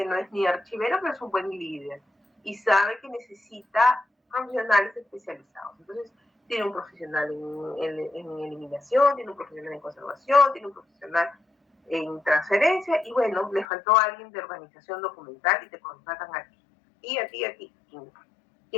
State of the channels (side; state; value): right; drops out; at 13.7 s